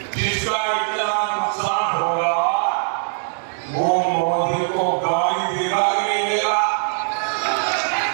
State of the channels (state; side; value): silent; left; 65 dB below the other